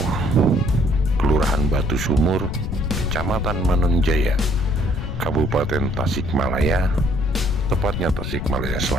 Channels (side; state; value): left; noise; rumble, 5 dB below the sound